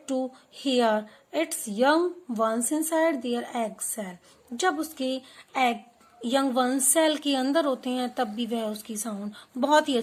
to hear its young ones inside their egg cell. जब उसके एग यंग वंस सेल के अंदर होते हैं तब भी वह उसकी साउंड बहुत ही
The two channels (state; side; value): identical; both; correlation 1.00